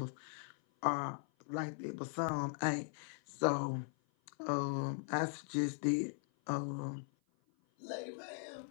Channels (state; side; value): silent; right; 51 dB below the other